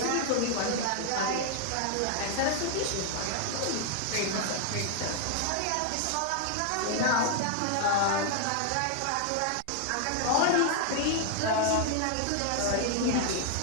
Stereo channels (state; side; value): different; both; correlation 0.00